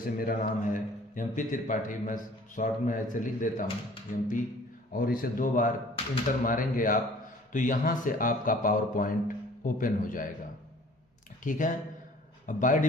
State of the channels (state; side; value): normal; both; correlation 0.51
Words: मेरा नाम है एमपी त्रिपाठी, मैं शॉर्ट में ऐसे लिख देता हूँ एमपी, और इसे 2 बार इंटर मारेंगे आप तो यहाँ से आपका पावर पॉइंट ओपन हो जाएगा। ठीक है, अब बाय